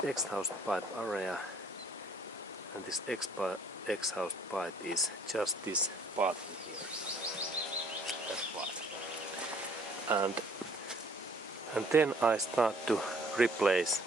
exhaust pipe area and this exhaust pipe is just this part in here. That part. And then I start to replace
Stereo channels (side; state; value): both; normal; correlation 0.59